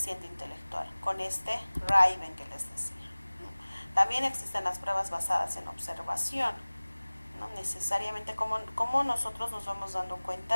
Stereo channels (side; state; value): both; inverted; correlation -1.00